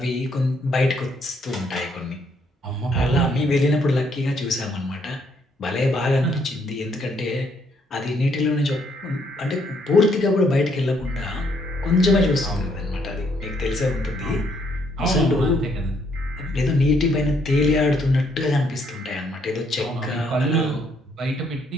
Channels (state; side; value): normal; both; correlation 0.70